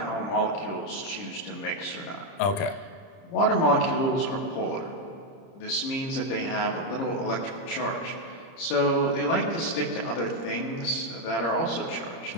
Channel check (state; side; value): late; right; 30 ms